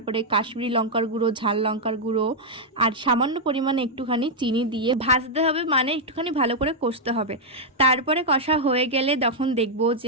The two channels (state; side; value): normal; both; correlation -0.04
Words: কাশ্মীরি লঙ্কার গুঁড়ো, ঝাল লঙ্কার গুঁড়ো আর সামান্য পরিমাণে একটুখানি চিনি দিয়ে ভাজতে হবে, মানে একটুখানি ভালো করে কষতে হবে। তারপরে কষা হয়ে গেলে তখন দেখবো